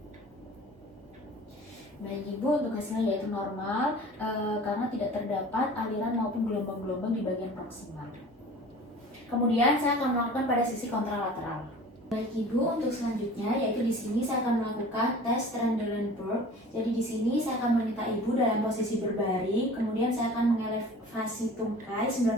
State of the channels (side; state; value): both; normal; correlation 0.43